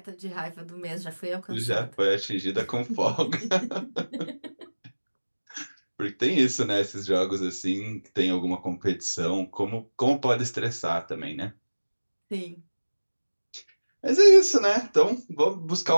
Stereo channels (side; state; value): both; inverted; correlation -1.00